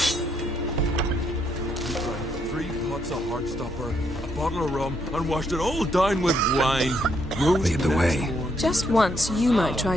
We drank 3 pots of Heartstopper, a bottle of rum, and washed it all down with wine. Lead the way. Just once, you might try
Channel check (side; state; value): both; normal; correlation 0.74